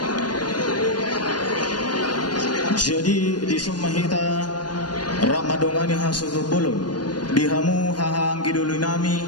Jadi di Sumahita Ramadongani hasutu bolon dihamu hahang gidulu nami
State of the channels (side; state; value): right; late; 0.70 ms